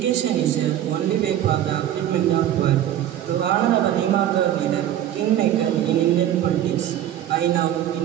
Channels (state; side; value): quieter; left; 11.6 dB